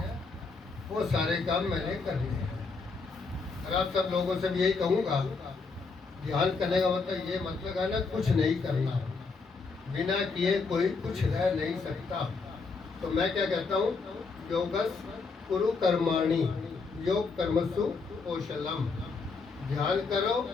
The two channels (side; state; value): right; quieter; 4.4 dB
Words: वो सारे काम मैंने करने हैं। और आप सब लोगों से भी यही कहूँगा, ध्यान करने का मतलब ये मतलब है ना कुछ नहीं करना, बिना किए कोई कुछ रह नहीं सकता। तो मैं क्या कहता हूँ, योगस कुरु कर्माणि योग कर्मसु कौशलम। ध्यान करो